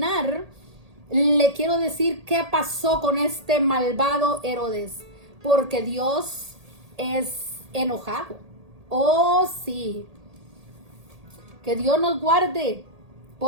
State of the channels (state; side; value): late; left; 1.8 ms